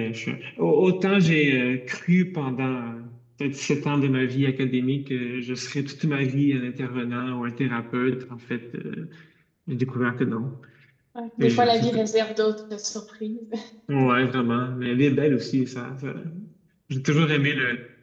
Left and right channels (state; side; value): identical; both; correlation 1.00